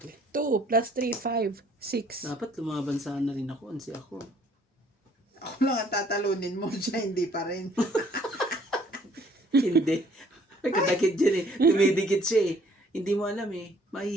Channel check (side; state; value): both; normal; correlation 0.60